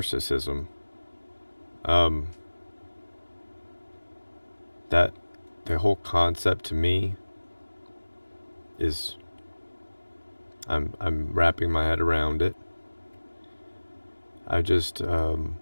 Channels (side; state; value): both; inverted; correlation -1.00